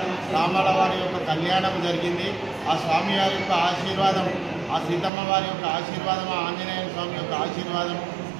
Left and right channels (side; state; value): left; drops out; at 5.1 s